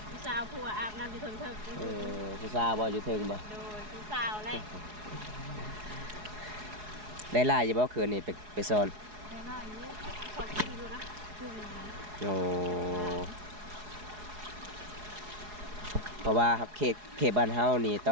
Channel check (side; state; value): left; late; 4.8 ms